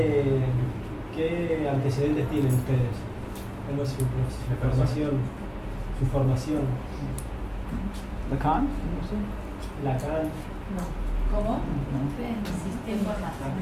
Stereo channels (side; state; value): both; identical; correlation 1.00